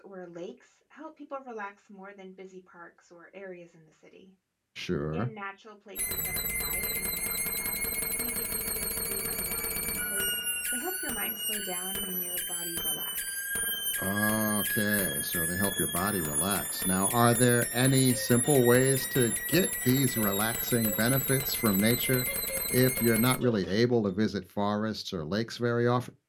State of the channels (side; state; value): both; identical; correlation 1.00